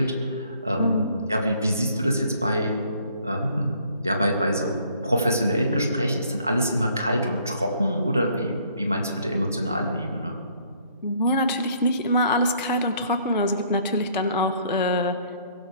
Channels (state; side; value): inverted; both; correlation -0.62